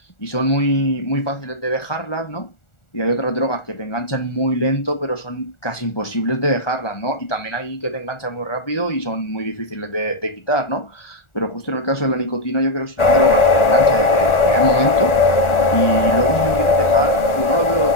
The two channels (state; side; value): late; right; 1.4 ms